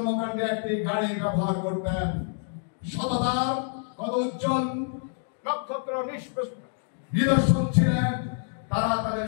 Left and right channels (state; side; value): silent; right; digital silence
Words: একটি গাড়ি ব্যবহার করতেন। সততার কত উজ্জ্বল নক্ষত্র নিদর্শন ছিলেন। তারা তাদের